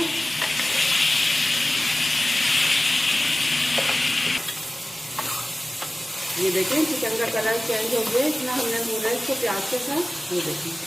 ये देखें, चिकन का कलर चेंज हो गया। इतना हमने भूना है इसको प्याज के साथ। ये देखें,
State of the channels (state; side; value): normal; both; correlation 0.96